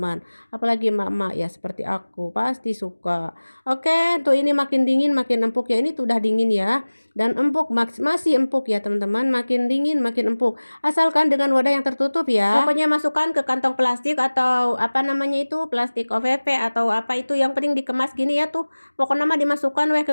Apalagi emak-emak ya seperti aku pasti suka. Oke, tuh ini makin dingin makin empuk ya. Ini tuh udah dingin ya. Dan empuk masih empuk ya teman-teman. Makin dingin makin empuk. Asalkan dengan wadah yang tertutup ya. Pokoknya masukkan ke kantong plastik atau apa namanya itu plastik OVP atau apa itu yang penting dikemas gini ya tuh. Pokoknya mah dimasukkan weh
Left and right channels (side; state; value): both; inverted; correlation -1.00